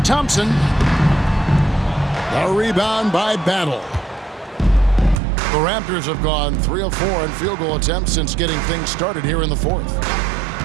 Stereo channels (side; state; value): left; drops out; at 5.2 s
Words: The rebound by Battle. The Raptors have gone 3 of 4 in field goal attempts since getting things started here in the fourth.